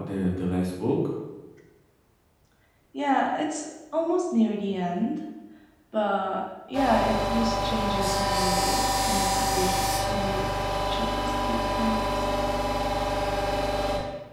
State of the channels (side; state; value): both; identical; correlation 1.00